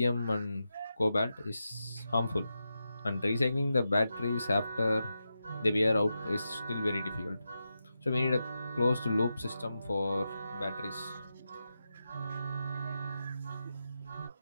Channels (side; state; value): both; inverted; correlation -0.89